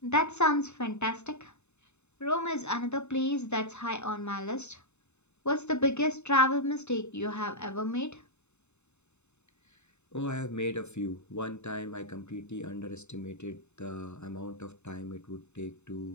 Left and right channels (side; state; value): right; late; 0.82 ms